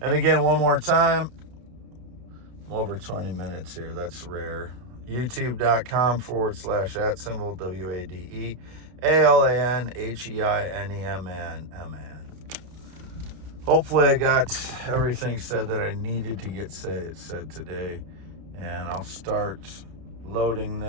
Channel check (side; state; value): left; late; 32 ms